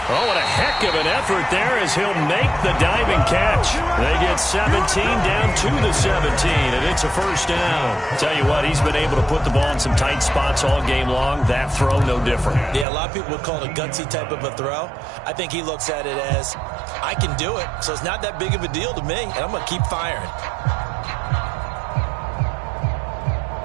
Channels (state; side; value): drops out; left; at 12.9 s